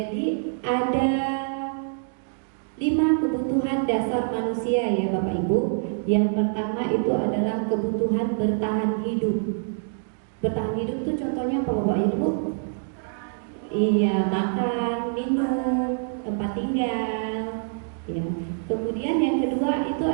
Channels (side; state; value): left; silent; digital silence